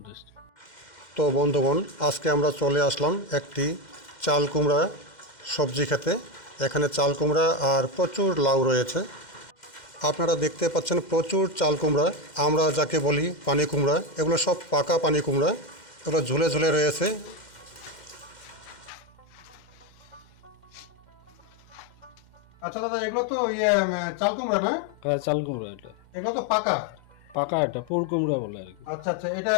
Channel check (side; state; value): right; late; 2.1 ms